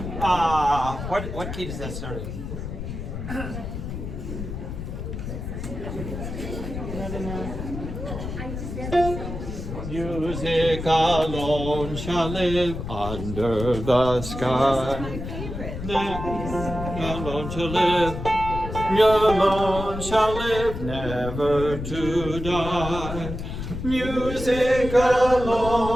What key does that start in? Music alone shall live under the sky. Alone shall live. Alone shall live, never to die. Music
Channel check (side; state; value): left; noise; rumble, 7 dB below the sound